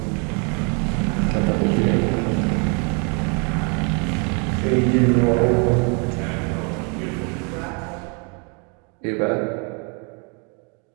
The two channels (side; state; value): left; quieter; 35.4 dB